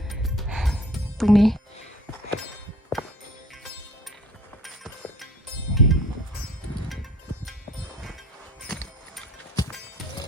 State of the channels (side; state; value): both; normal; correlation 0.51